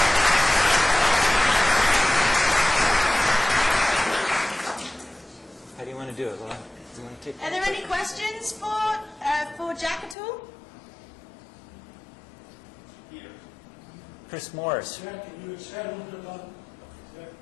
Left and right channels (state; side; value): drops out; right; at 10.2 s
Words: How do you want to do it, Laura? Do you want to take Are there any questions for Jack at all? Chris Morris. Jack, can you expand a little bit about that